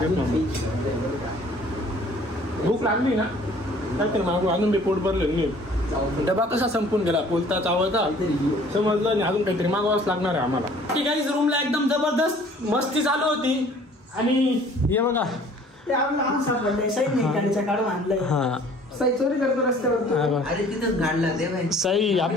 भूक लागली ना काहीतरी मागू अजून मी पोट भरले मी. डबा कसा संपून गेला बोलता चावता समजलं नाही. अजून काहीतरी मागवावंच लागणार आहे आम्हाला. ठीक आहे रूमला एकदम जबरदस्त मस्ती चालू होती. आणि हे बघा साई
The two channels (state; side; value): normal; both; correlation 0.53